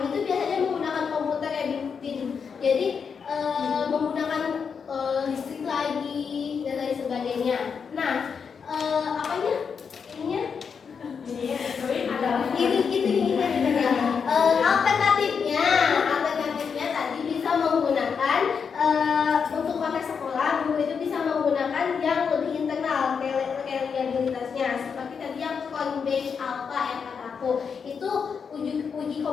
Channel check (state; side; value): quieter; right; 6.2 dB